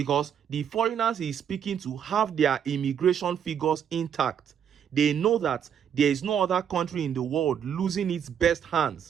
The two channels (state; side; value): quieter; left; 8.5 dB